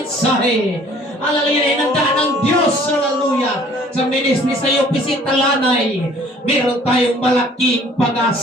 Hallelujah, inandaan ng Diyos. Hallelujah. Sa ministry sa iyo, Pisitalanay, meron tayong malaking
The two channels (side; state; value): both; normal; correlation 0.55